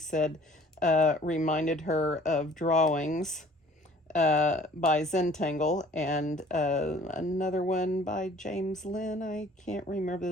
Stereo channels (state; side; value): normal; both; correlation 0.52